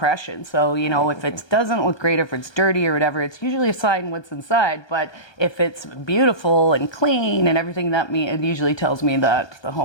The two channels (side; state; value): right; late; 1.2 ms